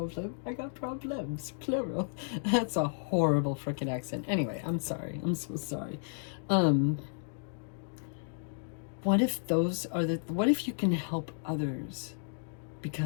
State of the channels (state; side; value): silent; right; digital silence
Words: I got problems. Plural. That's a horrible freaking accent. Anyway, I'm sorry. I'm so sorry. What if what if you can help others